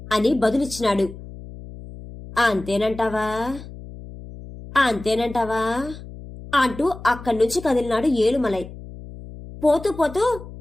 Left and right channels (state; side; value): noise; left; hum, 15 dB below the sound